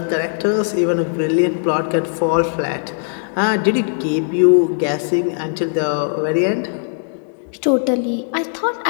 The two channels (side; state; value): right; silent; digital silence